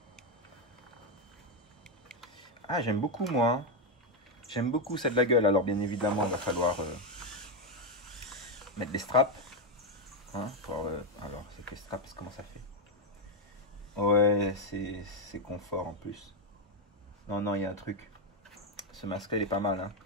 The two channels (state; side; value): normal; both; correlation 0.05